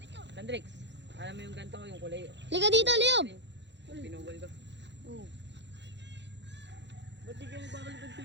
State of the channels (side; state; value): left; late; 0.52 ms